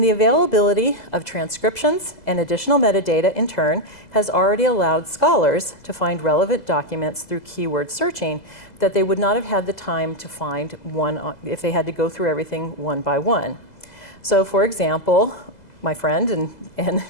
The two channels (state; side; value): late; right; 2.0 ms